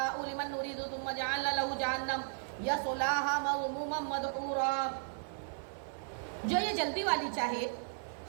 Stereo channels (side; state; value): left; silent; 54 dB below the other